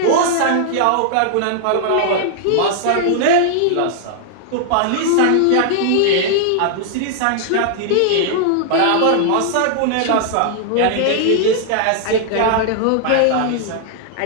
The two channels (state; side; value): different; both; correlation -0.01